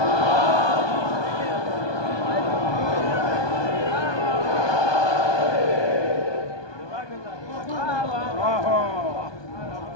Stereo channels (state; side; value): late; right; 1.2 ms